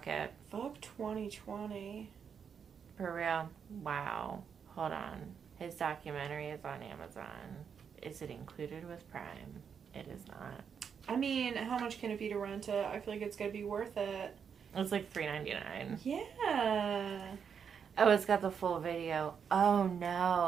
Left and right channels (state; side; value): quieter; left; 7.0 dB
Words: Fuck 2020. For real? Wow. Hold on. His documentary is on Amazon. Is it included with Prime? It is not. I mean, how much can it be to rent it? I feel like it's going to be worth it. It's like $3.99. Yeah. Oh, it's got the full video. Oh,